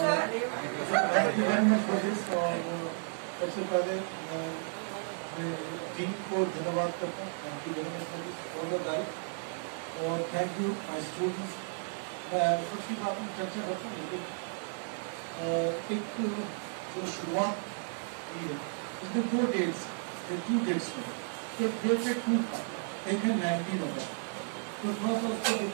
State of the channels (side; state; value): left; silent; 56 dB below the other